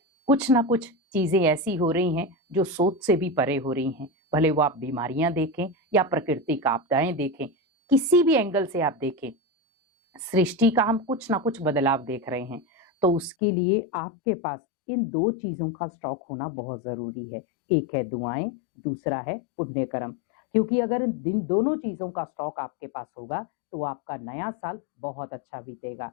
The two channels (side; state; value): right; drops out; at 13.4 s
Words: कुछ ना कुछ चीजें ऐसी हो रही हैं जो सोच से भी परे हो रही हैं। भले वो आप बीमारियां देखें या प्राकृतिक आपदाएं देखें, किसी भी एंगल से आप देखें, सृष्टि का हम कुछ ना कुछ बदलाव देख रहे हैं। तो उसके लिए आपके पास इन 2 चीजों का स्टॉक होना बहुत जरूरी है। एक है दुआएं, दूसरा है पुण्य कर्म। क्योंकि अगर इन दोनों चीजों का स्टॉक आपके पास होगा तो आपका नया साल बहुत अच्छा बीतेगा।